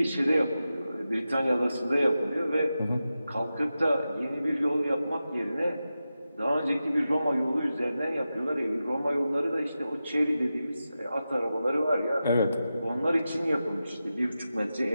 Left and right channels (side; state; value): both; inverted; correlation -0.92